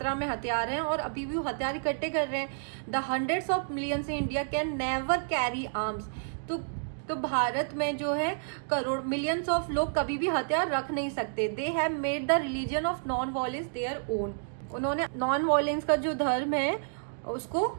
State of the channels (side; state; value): left; silent; digital silence